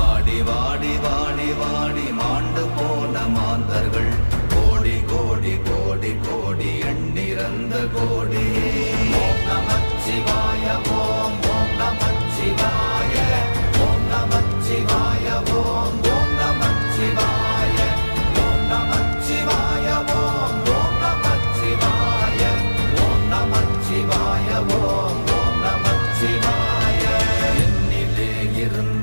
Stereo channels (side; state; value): both; inverted; correlation -1.00